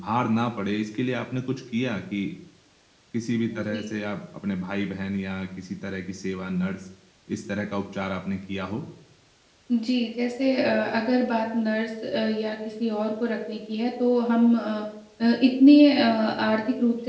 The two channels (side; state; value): both; identical; correlation 1.00